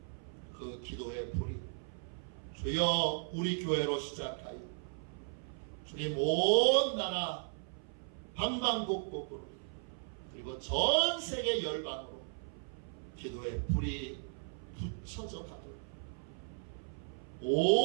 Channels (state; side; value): silent; left; 53 dB below the other